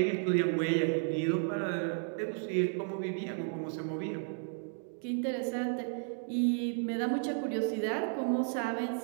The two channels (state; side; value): silent; left; 56 dB below the other